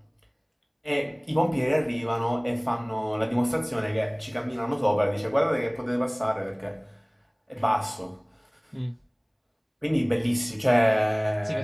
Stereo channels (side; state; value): both; identical; correlation 1.00